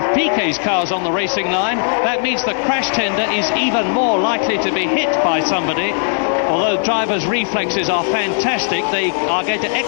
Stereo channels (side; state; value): right; silent; digital silence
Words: Piquet's car's on the racing line, that means the crash tender is even more likely to be hit by somebody. Although drivers' reflexes are fantastic, they are going to